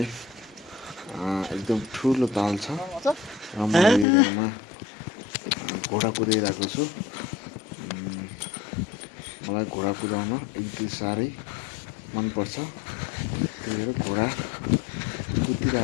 एकदम ठुलो ताल छ र म यो एरियामा घोडा कुदाइरहेको छु। मलाई घोडा कुदाउन एकदमै साह्रै मनपर्छ। त्यही भएर घोडा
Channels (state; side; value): drops out; right; at 4.0 s